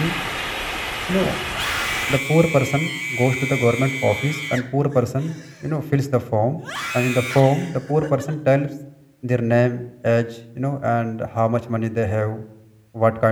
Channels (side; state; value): both; identical; correlation 1.00